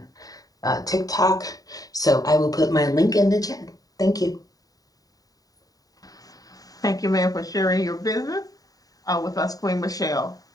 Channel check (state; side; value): late; right; 0.18 ms